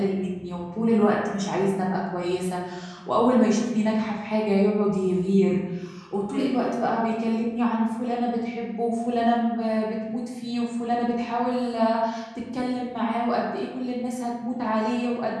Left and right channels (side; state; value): both; identical; correlation 1.00